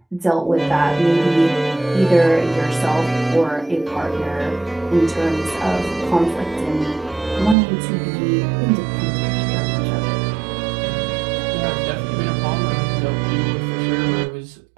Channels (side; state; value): left; drops out; at 7.6 s